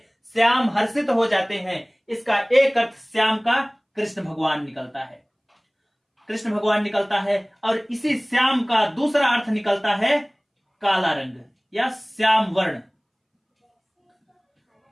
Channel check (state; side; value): identical; both; correlation 1.00